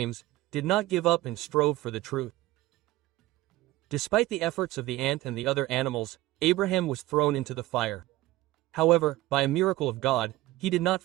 did not give up and strove for the truth. Despite the efforts of the ant and the other animals, Abraham was thrown into the fire. However, by a miracle of God, he did not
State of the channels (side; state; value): left; quieter; 17.2 dB